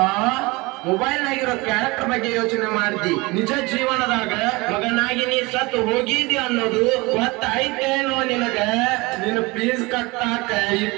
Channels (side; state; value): left; quieter; 23.9 dB